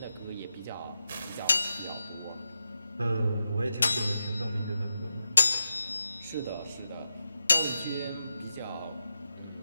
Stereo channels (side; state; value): both; inverted; correlation -0.88